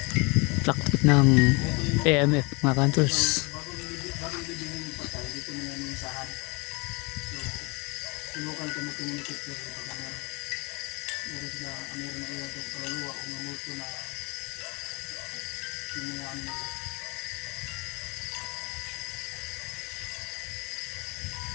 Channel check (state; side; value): quieter; right; 28.8 dB